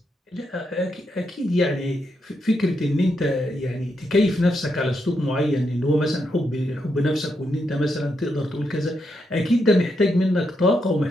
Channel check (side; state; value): both; normal; correlation 0.81